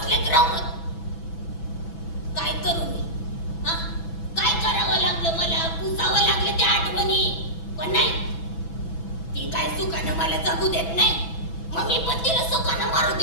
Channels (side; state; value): right; late; 6.0 ms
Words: राहून. काय करू मी? काय करावं लागलं मला? पुसावं लागलं त्या आठवणी. पण नाही, सुखानं मला जगू देत नाही मग मी पण तिला सुखानं मारू